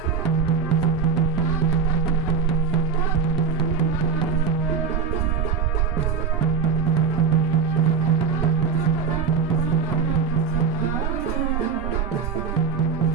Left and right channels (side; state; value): left; quieter; 6.1 dB